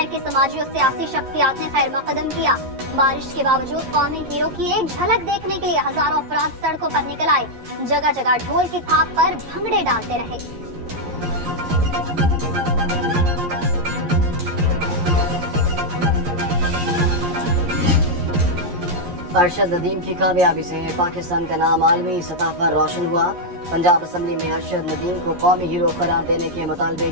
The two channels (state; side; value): late; left; 11 ms